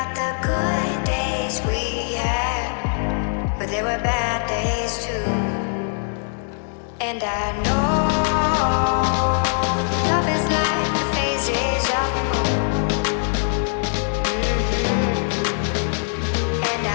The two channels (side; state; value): right; silent; digital silence